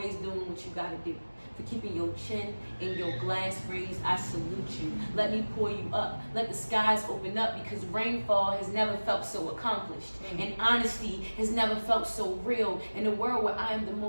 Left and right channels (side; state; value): both; inverted; correlation -1.00